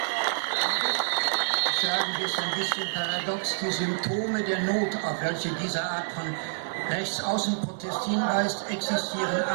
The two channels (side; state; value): left; silent; 60 dB below the other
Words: Sagen wir es ein bisschen paradox, die Symptome der Not, auf welche diese Art von Rechtsaußenprotest hinweist, existieren